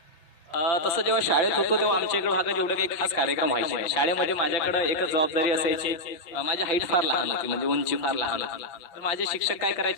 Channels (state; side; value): late; right; 5.9 ms